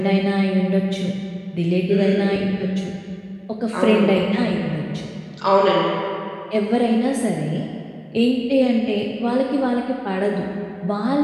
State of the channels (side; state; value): both; identical; correlation 1.00